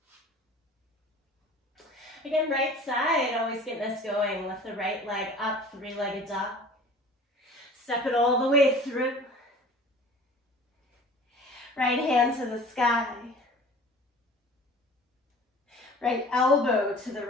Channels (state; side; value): normal; both; correlation 0.44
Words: Again, right side, always getting us going with the right leg up, three-legged dog. Step it all the way through. Right hand to the sky. Right elbow to the